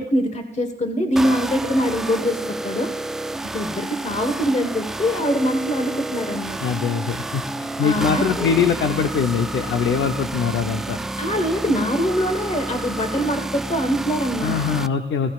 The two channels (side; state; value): both; normal; correlation 0.59